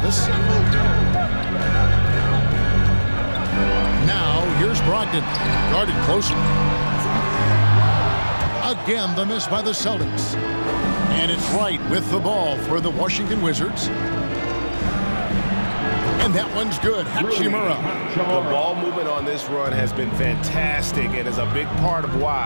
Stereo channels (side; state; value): both; inverted; correlation -1.00